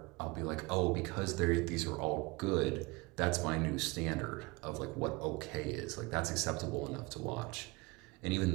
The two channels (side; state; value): left; quieter; 24.9 dB